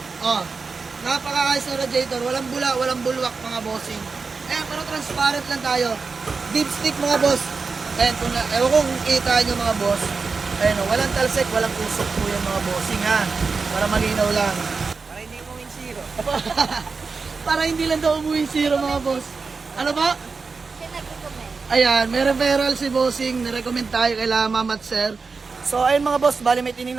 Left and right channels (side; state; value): left; quieter; 4.6 dB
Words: Oh, napakaayos na radiator. Walang bula, walang bulwak mga bossing. Ayan, pero transparent lang tayo. Deep stick mga boss. Ayan, ewan kung kita nyo mga boss. Ayan, walang talsik, walang usok po yan mga bossing ha. Para malinaw lang. Para hindi mo win zero. Para hindi lang daw umuwi zero mga boss. Ano ba? Ayan, may referral si bossing. Nirecommend tayo kay Ma'am at sir. So, ayun mga boss, bali may